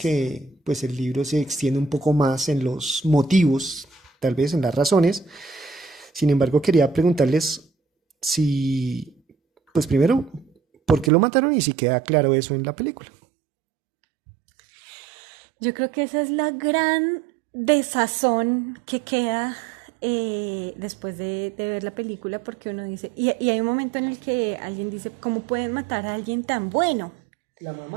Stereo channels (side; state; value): left; drops out; at 11.1 s